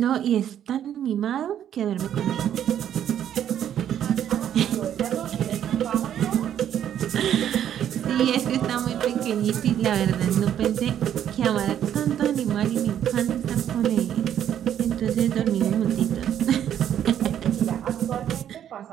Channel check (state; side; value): quieter; left; 10.1 dB